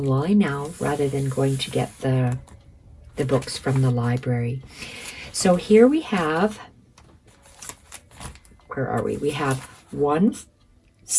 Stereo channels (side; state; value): both; identical; correlation 1.00